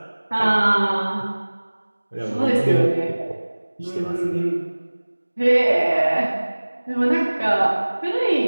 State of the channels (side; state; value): both; inverted; correlation -1.00